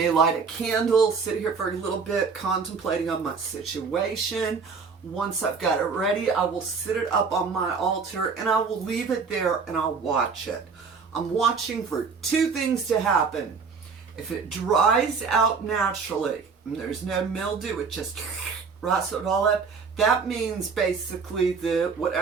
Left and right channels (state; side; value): quieter; left; 5.2 dB